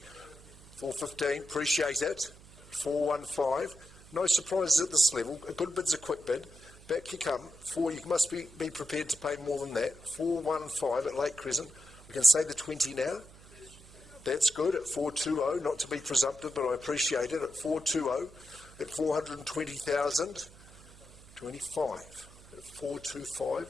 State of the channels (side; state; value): right; noise; hum, 21 dB below the sound